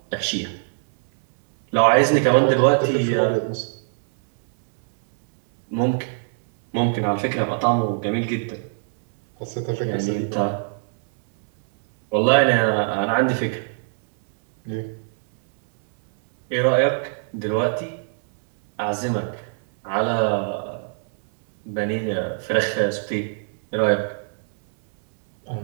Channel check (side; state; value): left; silent; 63 dB below the other